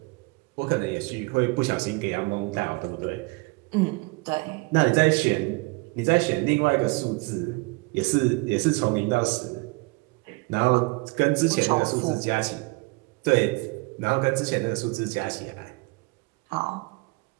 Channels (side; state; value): left; quieter; 27.0 dB